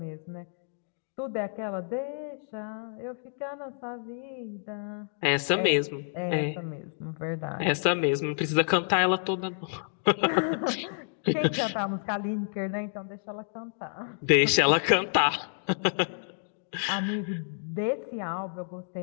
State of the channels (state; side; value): silent; right; digital silence